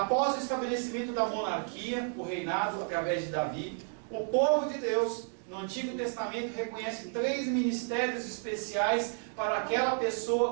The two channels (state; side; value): silent; left; 57 dB below the other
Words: o estabelecimento da monarquia, o reinado através de Davi, o povo de Deus no Antigo Testamento reconhece 3 ministérios especiais para aquela